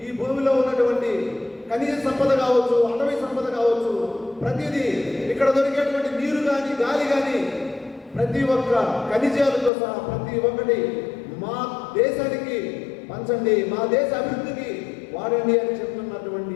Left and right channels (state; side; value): drops out; right; at 9.7 s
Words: ఈ భూమిలో ఉన్నటువంటి ఖనిజ సంపద కావచ్చు, అటవీ సంపద కావచ్చు, ప్రతిదీ ఇక్కడ దొరికేటువంటి నీరు కానీ, గాలి కానీ, ప్రతి ఒక్క ఖనిజాలతో సహా ప్రతి ఒక్కటి మా దేశానికి పంచండి, మా దేశ అభివృద్ధికి వాడండి అని చెప్తున్నటువంటి